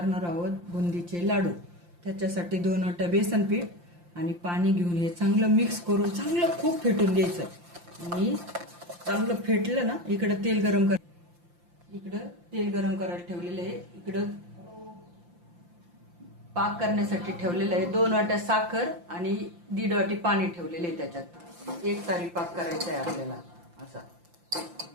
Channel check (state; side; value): late; left; 5.8 ms